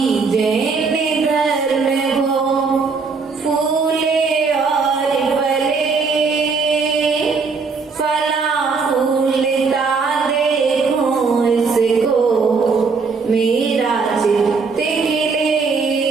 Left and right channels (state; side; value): quieter; left; 4.7 dB